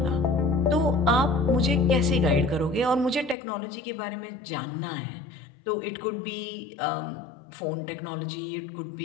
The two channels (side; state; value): right; drops out; at 3.4 s